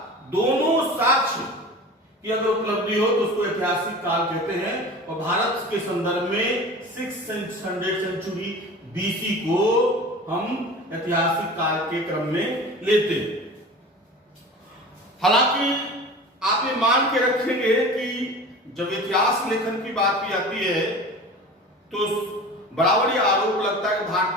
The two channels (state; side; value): normal; both; correlation 0.36